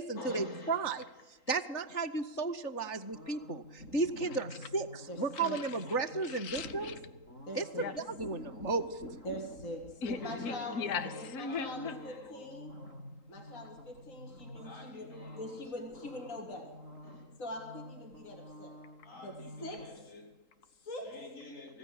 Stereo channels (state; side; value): late; right; 3.8 ms